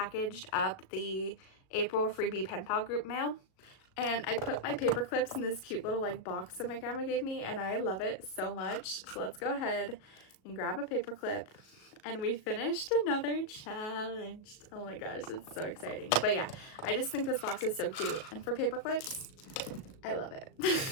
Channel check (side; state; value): right; late; 37 ms